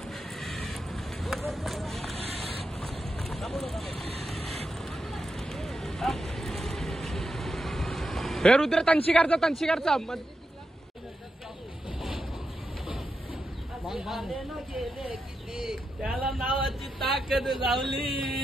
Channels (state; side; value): normal; both; correlation 0.87